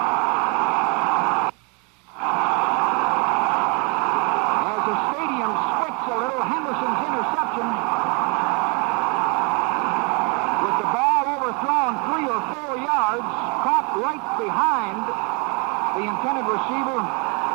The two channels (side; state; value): left; quieter; 32.9 dB